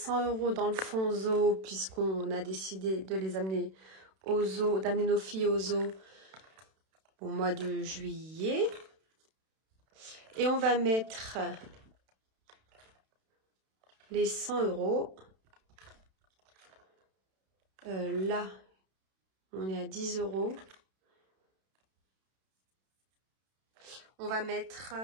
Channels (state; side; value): late; left; 32 ms